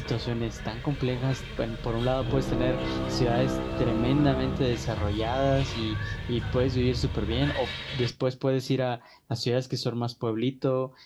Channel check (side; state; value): both; identical; correlation 1.00